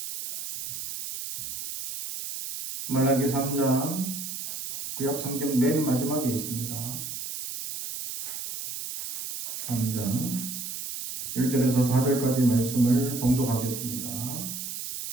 말라기 3장 구약성경 맨 마지막에 있습니다. 3장 1절에서 4절까지 말씀을 봉독하겠습니다.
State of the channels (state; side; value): noise; right; hiss, 6 dB below the sound